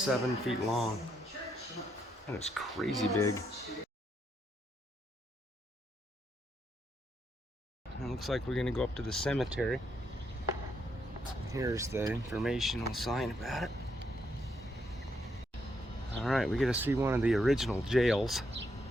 feet long. That is crazy big. It looks like we're gonna go up to the cemetery. Here's the informational sign about it. Alright, we get to see one of the original jails.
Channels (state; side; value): normal; both; correlation 0.77